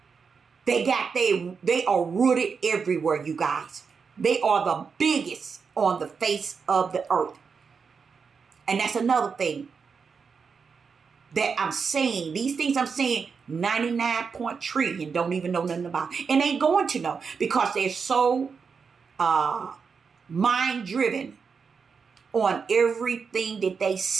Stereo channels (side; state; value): left; quieter; 5.6 dB